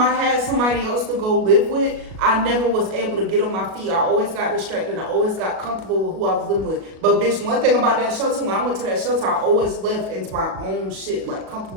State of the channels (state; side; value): late; left; 37 ms